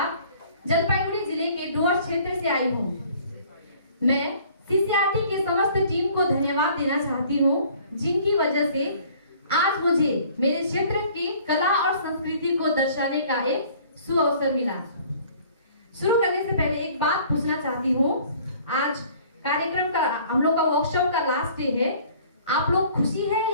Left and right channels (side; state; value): both; inverted; correlation -0.54